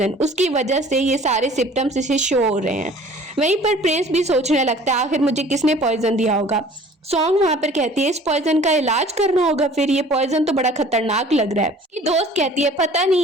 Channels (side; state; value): both; normal; correlation 0.49